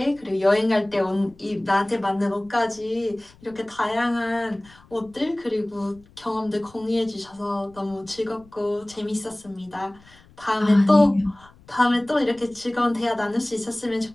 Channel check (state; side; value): noise; left; rumble, 26 dB below the sound